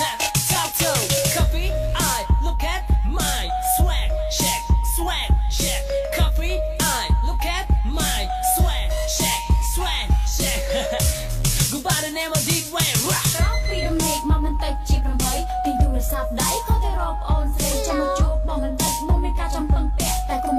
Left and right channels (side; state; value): both; identical; correlation 1.00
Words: Talk to coffee, I look at my swag, check. Coffee, I look at my swag, check. Go by the name of Deep Wayne. ពីរំលែកមកមិនតិចជា8ទីទូរស័ព្ទដៃខុសទៅរកអូនស្រីចាំមកជួបបងមិនតិចមុនមានការចំពឹងពាក់តែកុំ